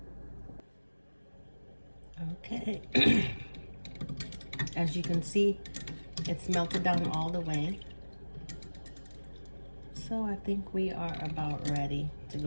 Okay, as you can see, it's melted down all the way. So I think we are about ready to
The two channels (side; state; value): both; inverted; correlation -1.00